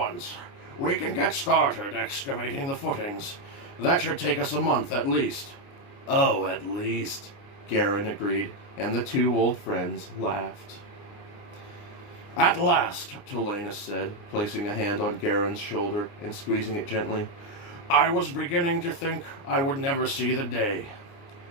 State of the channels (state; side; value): late; right; 29 ms